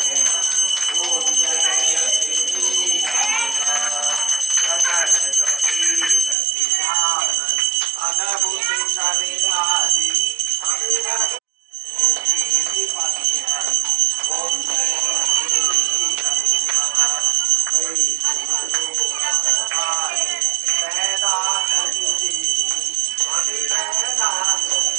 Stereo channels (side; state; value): left; drops out; at 6.4 s